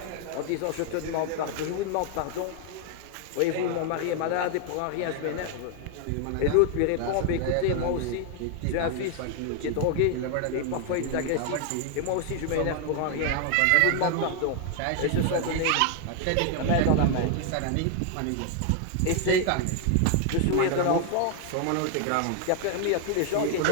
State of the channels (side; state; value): both; different; correlation 0.00